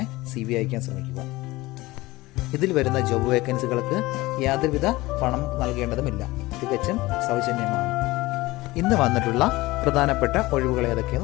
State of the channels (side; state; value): right; quieter; 19.9 dB